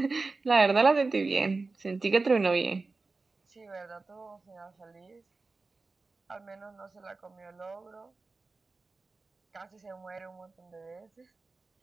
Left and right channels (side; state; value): left; quieter; 3.8 dB